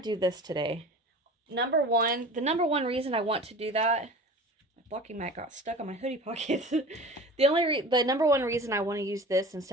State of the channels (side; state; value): both; normal; correlation 0.38